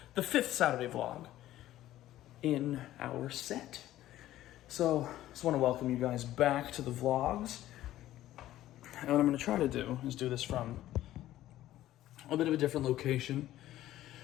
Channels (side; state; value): right; quieter; 14.1 dB